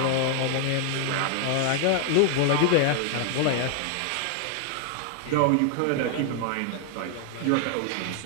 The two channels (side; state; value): both; different; correlation 0.00